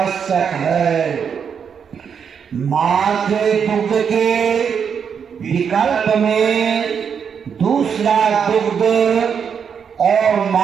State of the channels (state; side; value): quieter; left; 7.0 dB